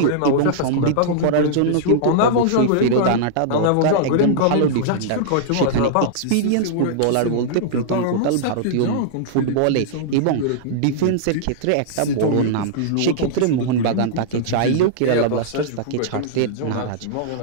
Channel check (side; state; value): both; different; correlation -0.02